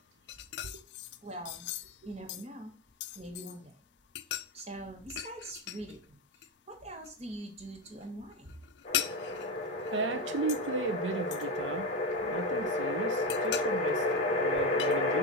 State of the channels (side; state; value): both; normal; correlation 0.14